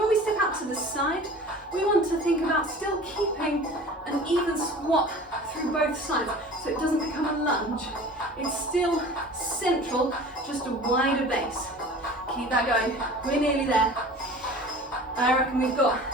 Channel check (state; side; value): normal; both; correlation 0.41